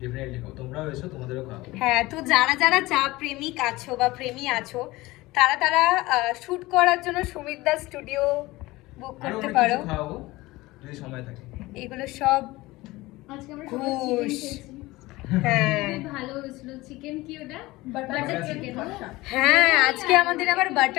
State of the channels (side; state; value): right; quieter; 19.8 dB